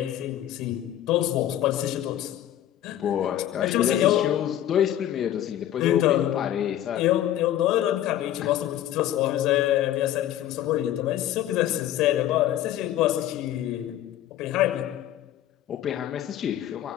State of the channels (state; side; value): quieter; right; 12.2 dB